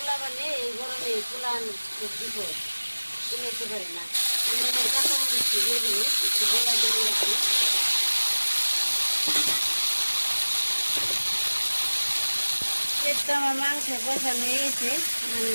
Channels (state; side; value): inverted; both; correlation -1.00